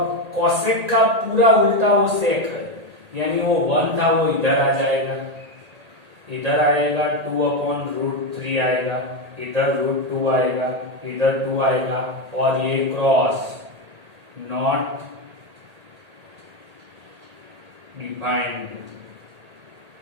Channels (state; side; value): late; left; 1.8 ms